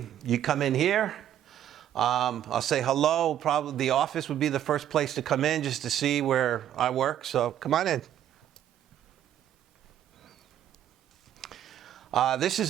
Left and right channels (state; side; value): quieter; left; 10.9 dB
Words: you come in here. I'll say hello. Probably the office would be the first place to come in just to see where I work. So come on in. This